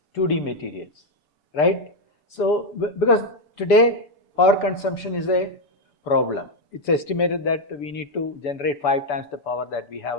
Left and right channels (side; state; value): right; late; 6.9 ms